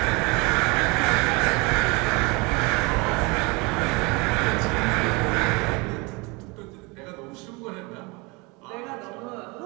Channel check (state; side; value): quieter; left; 27.4 dB